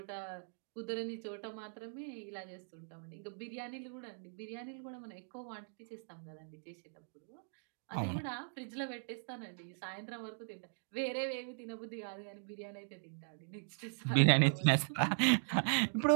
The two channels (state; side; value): silent; left; digital silence